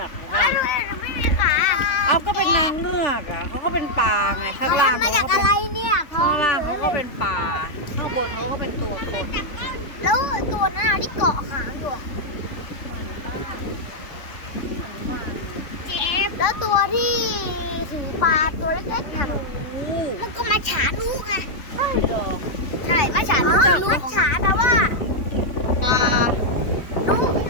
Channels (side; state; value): right; late; 3.5 ms